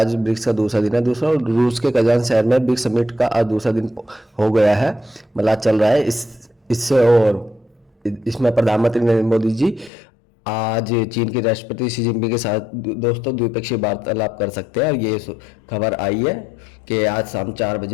ब्रिक्स का दूसरा दिन है। दूसरा रूस के कजान शहर में ब्रिक्स समिट का आज दूसरा दिन हो गया है, मतलब आज चल रहा है इससे। और इसमें प्रधानमंत्री नरेंद्र मोदी जी आज चीन के राष्ट्रपति शी जिनपिंग के साथ दोस्तों द्विपक्षीय वार्तालाप कर सकते हैं। और ये खबर आई है कि आज शाम 4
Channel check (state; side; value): drops out; right; at 9.9 s